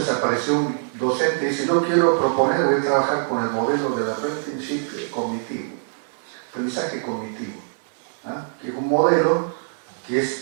apareció un docente y dice: yo quiero proponer, voy a trabajar con el modelo del apprenticeship cognitivo, aprendizaje cognitivo, que es un modelo que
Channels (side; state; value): left; silent; 63 dB below the other